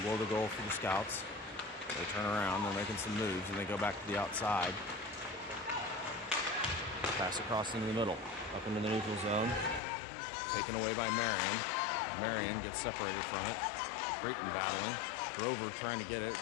below the goal for the Scouts. They turn around, they're making some moves, and they go back to the outside. Pass across into the middle, up into the neutral zone. Taken away by Marion. Marion gets separated from it. Creighton battling. Grover trying to get it.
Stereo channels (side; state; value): right; drops out; at 9.8 s